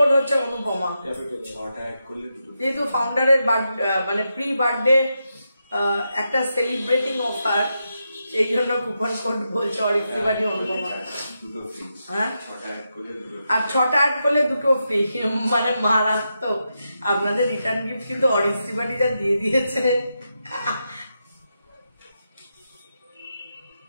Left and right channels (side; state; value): both; inverted; correlation -0.86